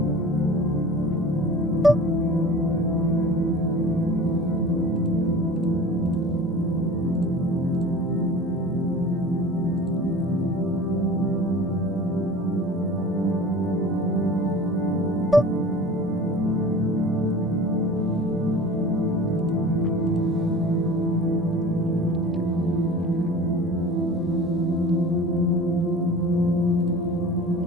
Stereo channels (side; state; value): both; normal; correlation 0.40